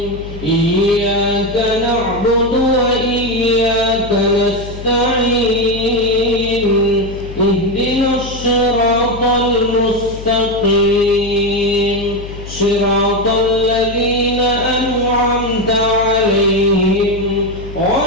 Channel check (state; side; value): noise; left; hum, 12 dB below the sound